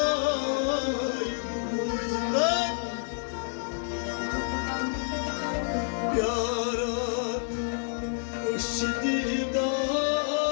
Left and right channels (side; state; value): right; silent; 59 dB below the other